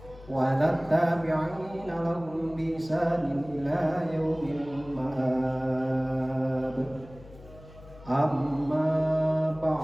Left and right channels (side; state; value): left; noise; hum, 20 dB below the sound